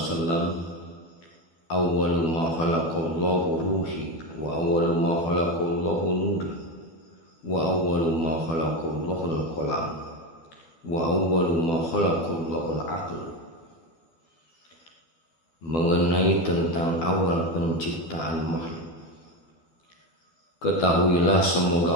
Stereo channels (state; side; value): late; right; 12 ms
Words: awwalu ma khalaqallahu ruhi wa awwalu ma khalaqallahu nuri wa awwalu ma khalaqallahu al-qalam wa awwalu ma khalaqallahu al-aql. Mengenai tentang awal penciptaan makhluk, ketahuilah